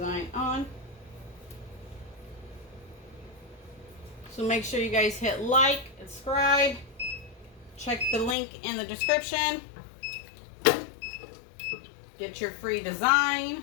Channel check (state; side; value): drops out; right; at 8.3 s